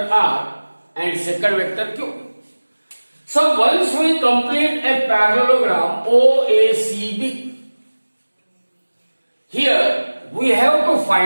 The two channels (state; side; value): inverted; both; correlation -1.00